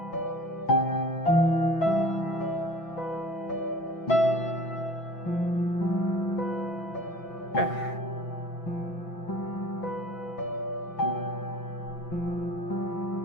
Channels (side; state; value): right; late; 6.0 ms